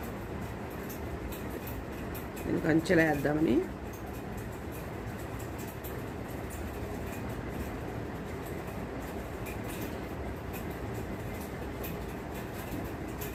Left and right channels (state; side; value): identical; both; correlation 1.00